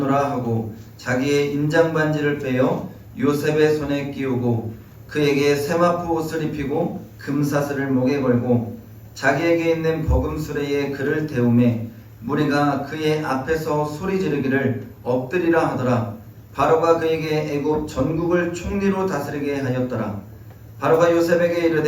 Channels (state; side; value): identical; both; correlation 1.00